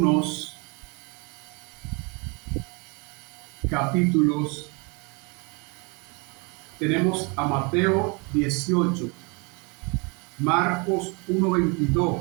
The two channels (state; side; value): quieter; left; 31.1 dB